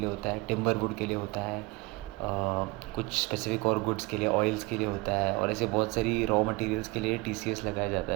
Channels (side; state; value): left; quieter; 24.1 dB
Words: होता है, टिम्बर वुड के लिए होता है, कुछ स्पेसिफिक और गुड्स के लिए, ऑयल्स के लिए होता है, और ऐसे बहुत सारी रॉ मटेरियल्स के लिए TCS लगाया जाता